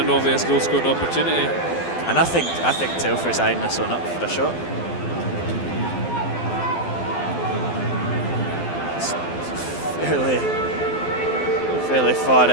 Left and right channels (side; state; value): right; late; 12 ms